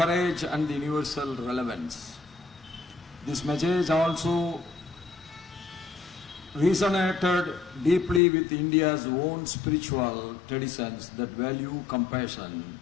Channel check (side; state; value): right; drops out; at 8.2 s